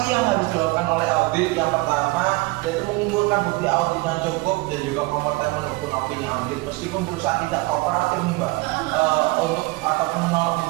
yang harus dilakukan oleh audit? Yang pertama yaitu mengumpulkan bukti audit yang cukup dan juga kompeten mendukung opini audit meskipun perusahaan tidak kooperatif nih Mbak untuk ataupun menolak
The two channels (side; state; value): left; quieter; 23.2 dB